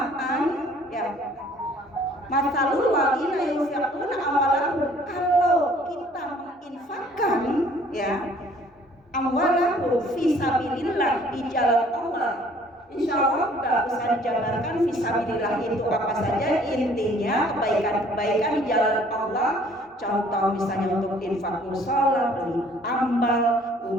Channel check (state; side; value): normal; both; correlation 0.57